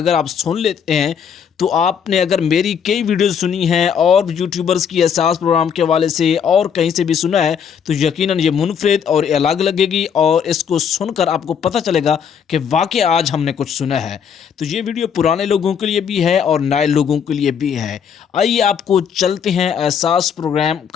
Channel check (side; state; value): right; quieter; 7.5 dB